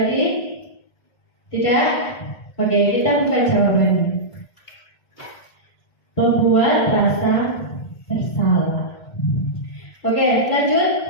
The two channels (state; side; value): late; right; 1.7 ms